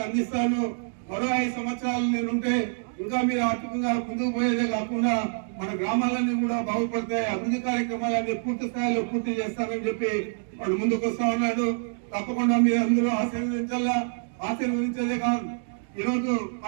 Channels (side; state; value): left; silent; digital silence